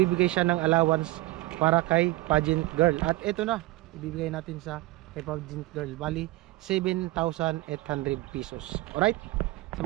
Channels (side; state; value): left; quieter; 19.3 dB